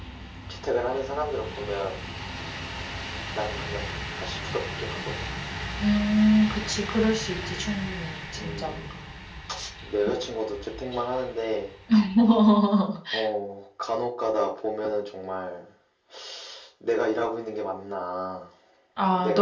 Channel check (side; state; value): both; identical; correlation 1.00